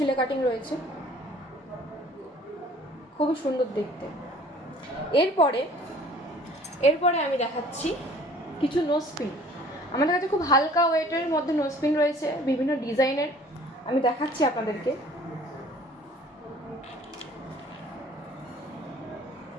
কাটিং রয়েছে, খুবই সুন্দর দেখতে। এরপরে আমি দেখাচ্ছি কিছু নোজপিন। আমাদের কাছে খুব হালকা ওয়েটের মধ্যে নোজপিন রয়েছে, বিভিন্ন ডিজাইনের। আমি দেখাচ্ছি আপনাদেরকে,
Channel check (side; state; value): both; normal; correlation 0.52